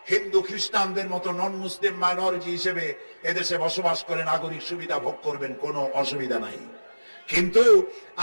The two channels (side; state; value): both; inverted; correlation -1.00